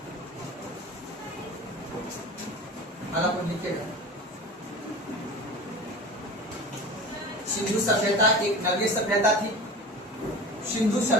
लिखेगा, सिंधु सभ्यता एक नगरीय सभ्यता थी। सिंधु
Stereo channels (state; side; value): normal; both; correlation 0.34